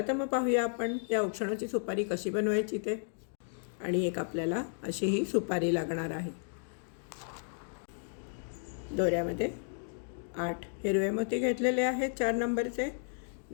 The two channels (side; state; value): right; silent; digital silence